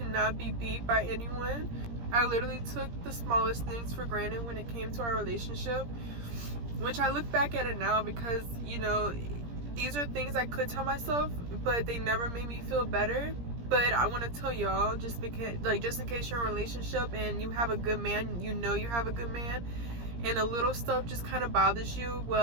not be beat by anyone. I literally took the smallest things for granted when it came to our relationship, which I look back at it now because, you know, these are things I could tell myself, but they never made me feel better. But I want to tell y'all, just because, like, just in case you're in a relationship and you have a good man, you know you have a good man, and the little stuff just kind of bothers you,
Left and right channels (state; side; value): late; left; 17 ms